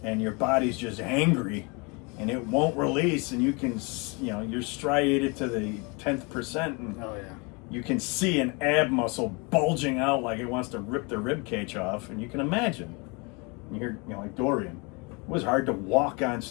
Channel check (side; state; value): right; quieter; 30.2 dB